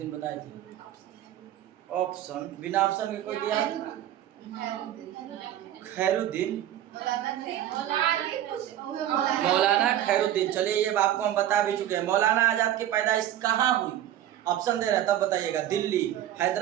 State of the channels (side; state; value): left; quieter; 12.0 dB